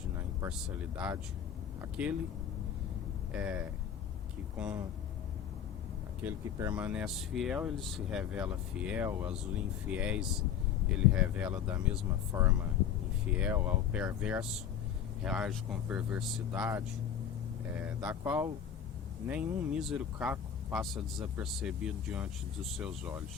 na imparcialidade, aquele que permanece fiel, ele se revela fiel, aos infiéis ele revela da mesma forma infiel, ao perverso reage com perversidade, da qual nenhum mísero caco passa desapercebido diante dos seus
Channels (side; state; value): right; quieter; 8.7 dB